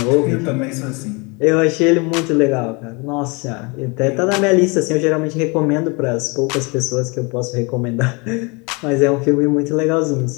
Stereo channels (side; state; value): right; quieter; 29.5 dB